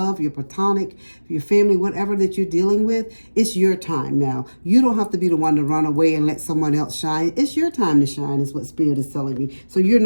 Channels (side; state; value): both; inverted; correlation -1.00